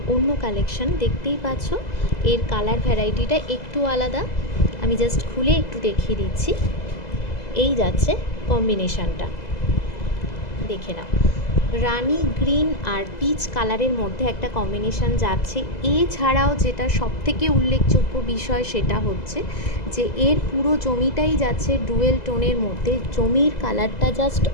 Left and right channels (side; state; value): right; late; 2.0 ms